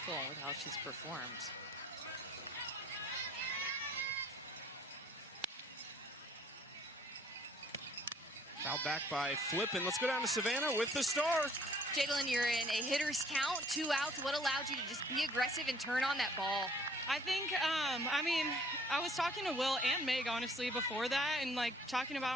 with how she's performed. Fouled back by Flippen. Let's go down to Savannah with the star. Jadlyn, you're in a hitter's count, 2 outs. What allowed you to just be aggressive and turn on that ball? I think, I was talking to Will and Meg, honestly, before that, and, like, talking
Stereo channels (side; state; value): both; normal; correlation 0.58